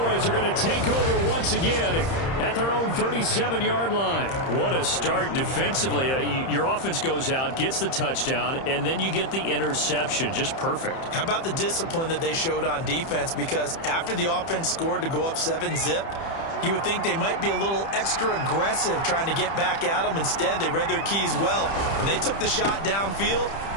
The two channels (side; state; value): right; late; 30 ms